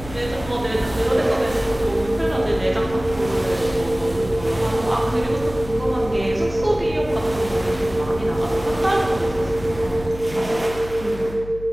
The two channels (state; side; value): noise; left; hum, 13 dB below the sound